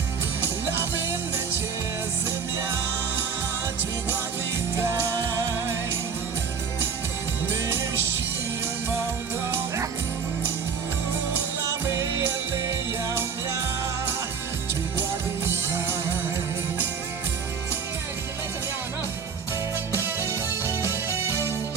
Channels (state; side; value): quieter; left; 6.1 dB